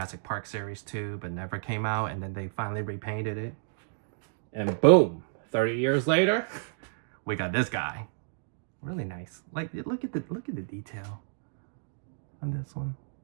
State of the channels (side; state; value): left; silent; digital silence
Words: Park Series 2, but never came out, and then they finally repainted it. And boom, 30 years later, we got this guy. Really nice. Like, look at the detail on this one.